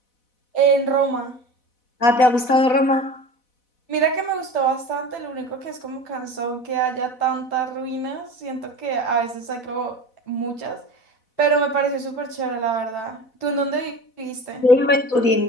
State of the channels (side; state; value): right; late; 4.0 ms